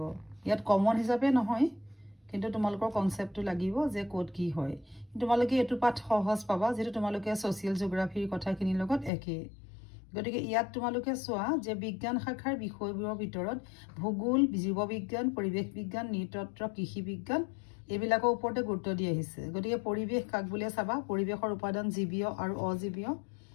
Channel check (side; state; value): right; drops out; at 9.1 s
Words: ইয়াত কমন হিচাপে নহয় কিন্তু তোমালোকৰ কনসেপ্টটো লাগিব যে কোড কি হয় তোমালোকে এটো পাঠ সহজ পাবা যেটো তোমালোকে সোশিয়াল জিওগ্ৰাফিৰ কথাখিনিৰ লগত একে গতিকে ইয়াত তোমালোকে চোৱা যে বিজ্ঞান শাখাৰ বিষয়বোৰৰ ভিতৰত ভূগোল জীৱবিজ্ঞান পৰিৱেশ বিজ্ঞান নৃতত্ত্ব কৃষি বিজ্ঞান এবিলাকৰ ওপৰতে গুৰুত্ব দি আহিছে গতিকে পৰিৱেশ কাক বুলিয়ে চাবা পৰিৱেশৰ উপাদান জীৱীয় আৰু অজীৱীয়